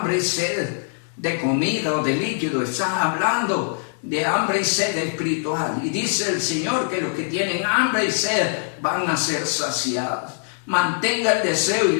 y sed de comida o de líquido, está hablando de hambre y sed espiritual. Y dice el Señor que los que tienen hambre y sed van a ser saciados. Mantenga el deseo y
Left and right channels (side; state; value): right; silent; digital silence